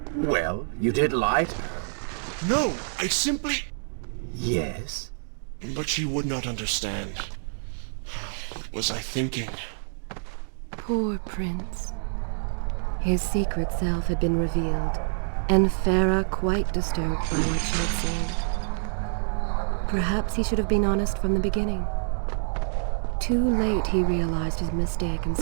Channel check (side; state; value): left; silent; digital silence